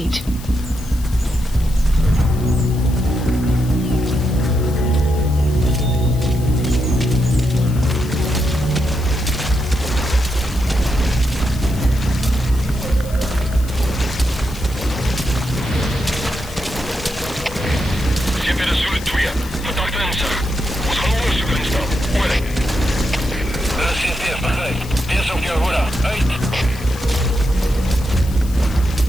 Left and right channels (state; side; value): noise; left; hiss, 18 dB below the sound